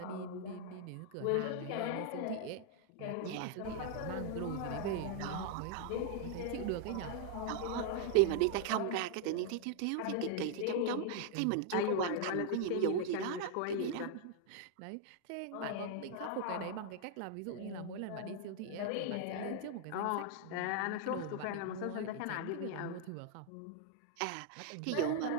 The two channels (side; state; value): both; different; correlation -0.01